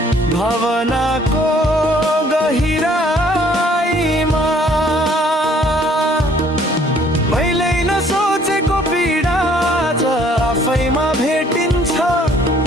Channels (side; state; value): both; normal; correlation 0.60